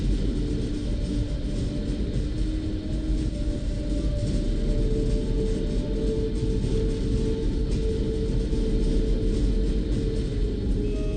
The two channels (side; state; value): both; identical; correlation 1.00